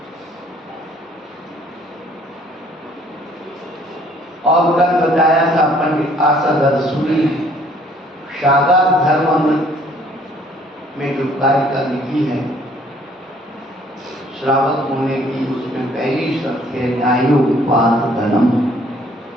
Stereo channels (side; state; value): both; normal; correlation 0.60